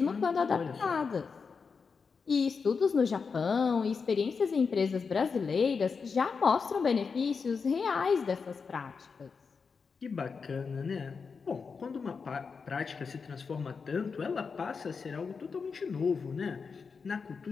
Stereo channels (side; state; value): right; quieter; 5.3 dB